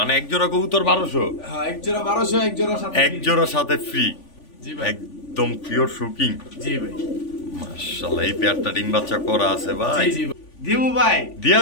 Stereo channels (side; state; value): right; late; 3.5 ms